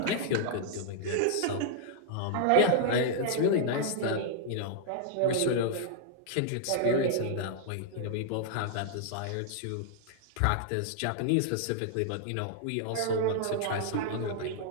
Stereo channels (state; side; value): different; both; correlation -0.01